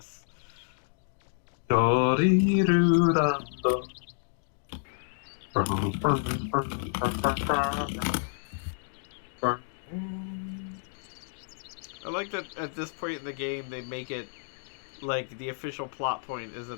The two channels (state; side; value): silent; right; digital silence